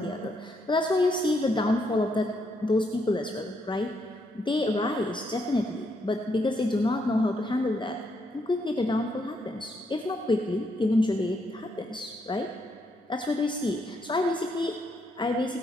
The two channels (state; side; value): normal; both; correlation 0.76